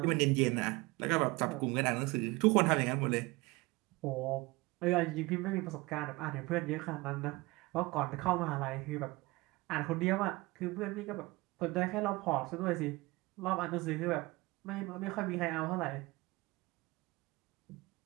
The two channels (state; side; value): quieter; left; 22.7 dB